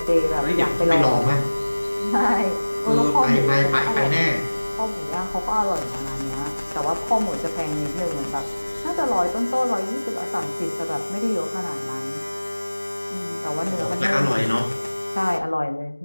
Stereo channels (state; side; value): inverted; both; correlation -1.00